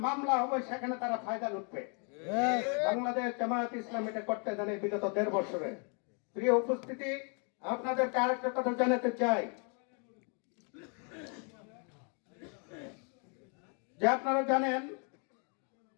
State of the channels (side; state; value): right; quieter; 38.5 dB